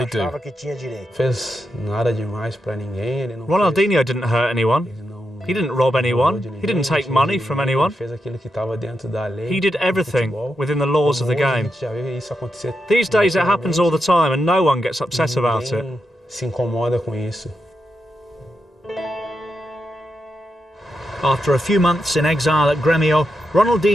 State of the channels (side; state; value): both; normal; correlation 0.86